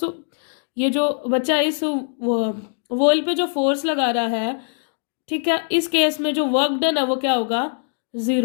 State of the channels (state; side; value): silent; right; digital silence